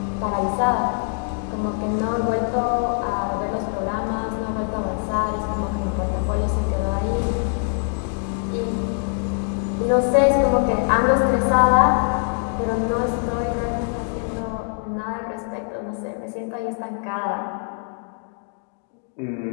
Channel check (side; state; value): right; silent; 55 dB below the other